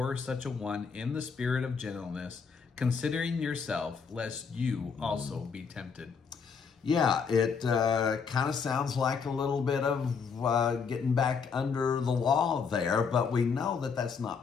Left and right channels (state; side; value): quieter; right; 5.8 dB